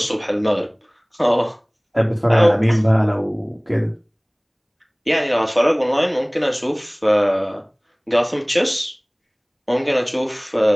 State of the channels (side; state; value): both; identical; correlation 1.00